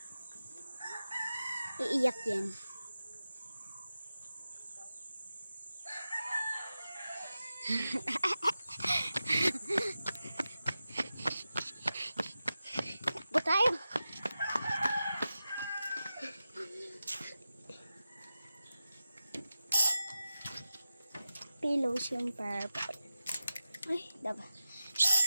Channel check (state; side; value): inverted; both; correlation -0.93